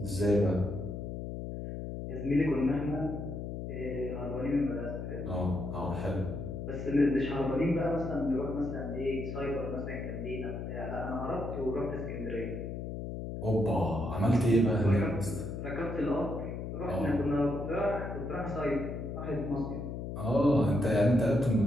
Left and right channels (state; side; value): noise; left; hum, 6 dB below the sound